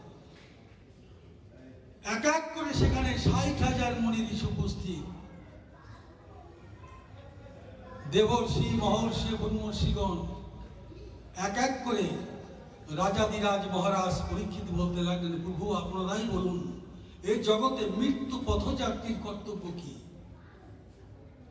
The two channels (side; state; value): both; identical; correlation 1.00